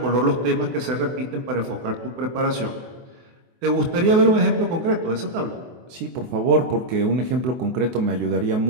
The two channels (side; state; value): left; late; 23 ms